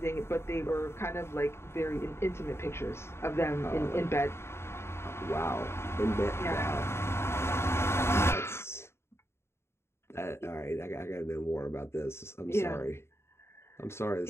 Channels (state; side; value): late; right; 0.12 ms